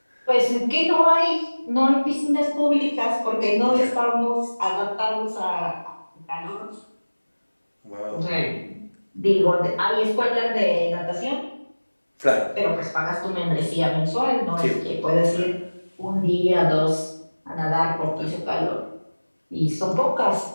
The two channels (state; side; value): inverted; both; correlation -1.00